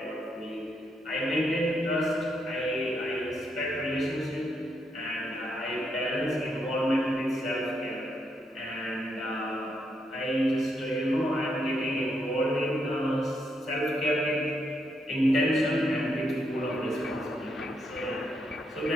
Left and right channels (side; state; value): both; normal; correlation 0.78